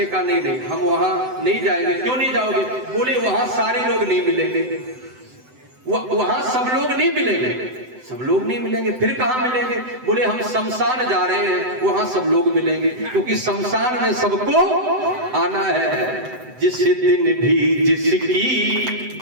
कहा नहीं हम वहां नहीं जाएंगे। क्यों नहीं जाओगे? बोले वहां सारे लोग नहीं मिलेंगे, वहां सब लोग नहीं मिलेंगे। सब लोग नहीं मिलेंगे, फिर कहां मिलेंगे? बोले हम शमशान जा रहे हैं, वहां सब लोग मिलेंगे, क्योंकि शमशान में सबको आना है। जिस दिन भी जिसकी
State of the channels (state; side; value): late; left; 7.9 ms